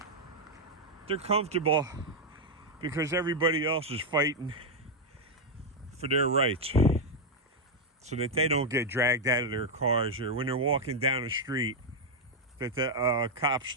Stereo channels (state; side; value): normal; both; correlation 0.01